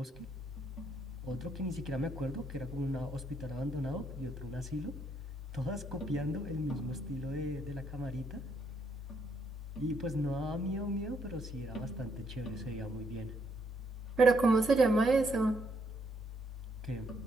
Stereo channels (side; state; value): both; normal; correlation 0.73